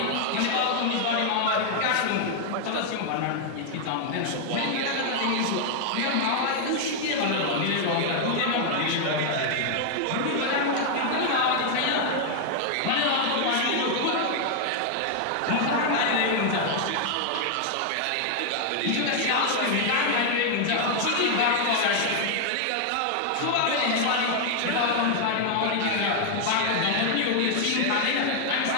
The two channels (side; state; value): both; different; correlation 0.00